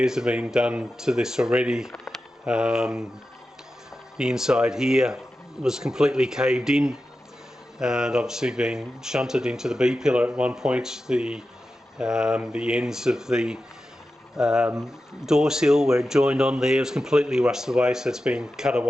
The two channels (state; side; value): normal; both; correlation 0.92